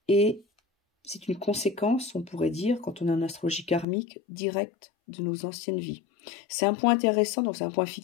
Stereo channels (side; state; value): right; drops out; at 3.9 s